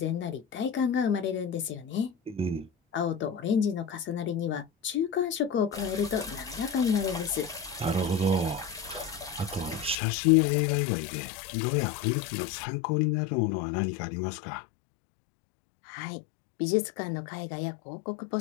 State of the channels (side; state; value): right; drops out; at 10.0 s